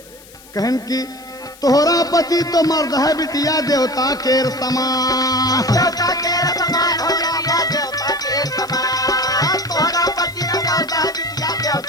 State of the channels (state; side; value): noise; left; hiss, 23 dB below the sound